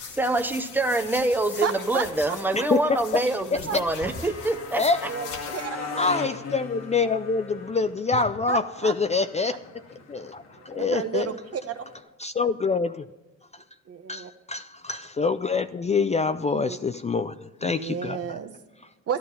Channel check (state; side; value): normal; both; correlation 0.40